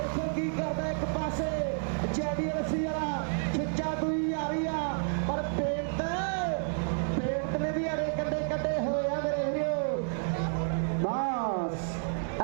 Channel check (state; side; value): silent; left; digital silence